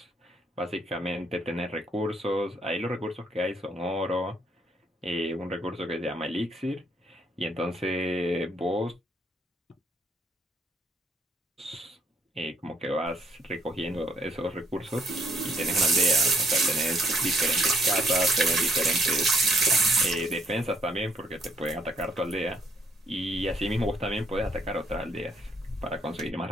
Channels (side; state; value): both; normal; correlation 0.70